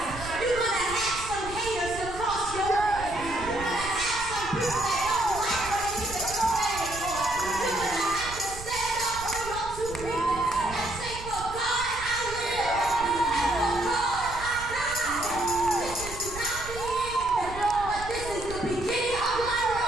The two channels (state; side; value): noise; right; rumble, 12 dB below the sound